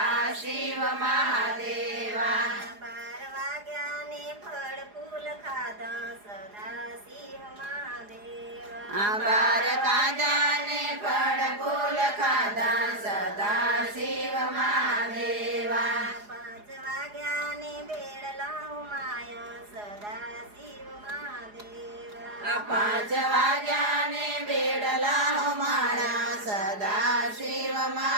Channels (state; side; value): late; left; 4.8 ms